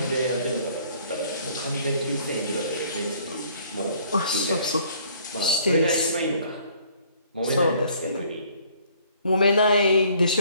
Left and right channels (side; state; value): both; inverted; correlation -0.59